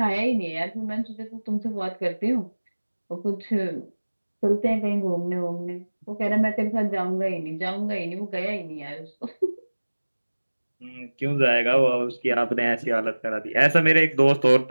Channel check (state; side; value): inverted; both; correlation -1.00